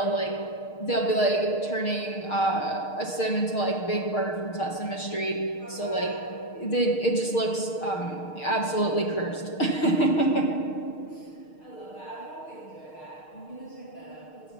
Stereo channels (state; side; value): late; right; 6.5 ms